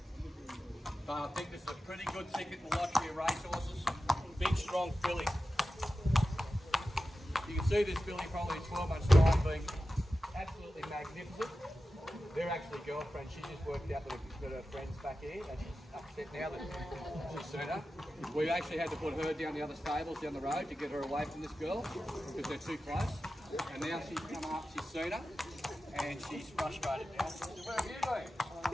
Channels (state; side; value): normal; both; correlation 0.93